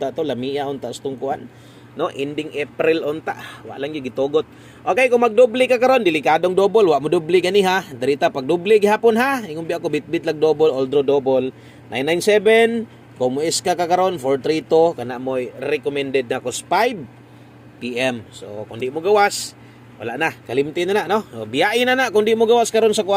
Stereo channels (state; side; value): identical; both; correlation 1.00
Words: to, lamia unta stong kuan, no, ending April unta. Wa lang gyud gitugot. Okay, kung magdoble ka karon, delikadong double, wa mo doble gani ha. Dirita pag doble gihapon ha. Ingon bi ako bit-bit lag double, all draw double. 997, kung mo iska ka karon 432 kana mo recommended na ko 5 PM. So kung di mo gawas, wala na, kalimti na no. Biyain na kung di mo gawas karon sa